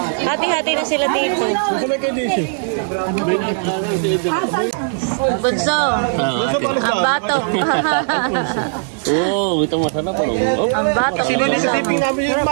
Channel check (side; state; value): left; silent; digital silence